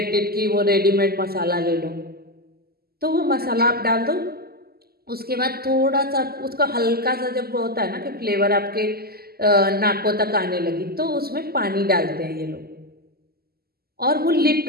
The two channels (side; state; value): left; late; 0.45 ms